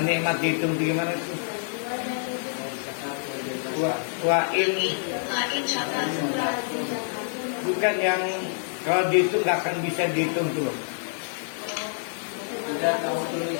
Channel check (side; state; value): right; silent; digital silence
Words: nikmat dihitung gimana tuh? Bukan yang kalau dihitung nggak akan bisa dihitung tuh.